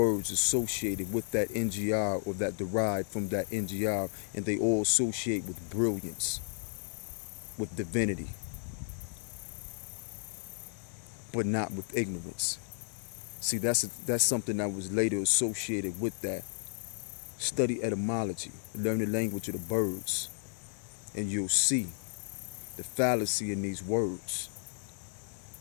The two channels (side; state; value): right; silent; digital silence